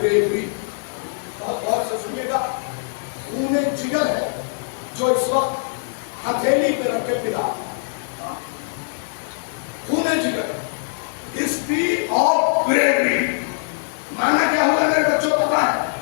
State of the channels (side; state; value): right; silent; digital silence